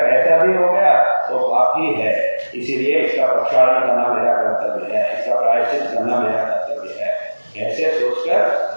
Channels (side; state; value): both; inverted; correlation -1.00